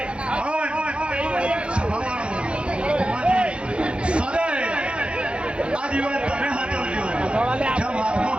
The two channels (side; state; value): left; late; 0.058 ms